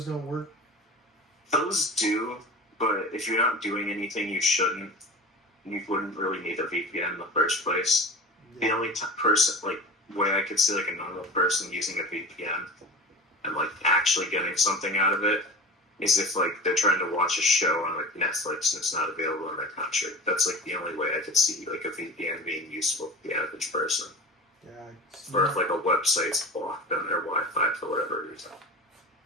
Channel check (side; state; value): both; normal; correlation 0.34